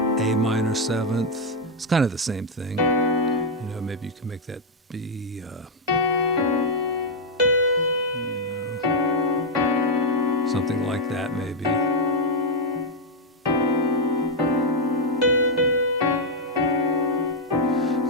minor 7th. It's kind of the same thing. Maybe you can make that be, something like that maybe.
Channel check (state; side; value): normal; both; correlation 0.00